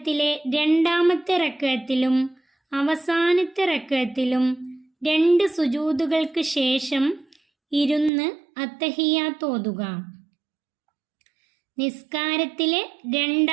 2ാമത്തെ റക്അത്തിലും അവസാനത്തെ റക്അത്തിലും 2 സുജൂദുകൾക്ക് ശേഷം ഇരുന്ന് അത്തഹിയാത്ത് ഓതുക. നിസ്കാരത്തിലെ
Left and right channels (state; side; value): drops out; left; at 8.1 s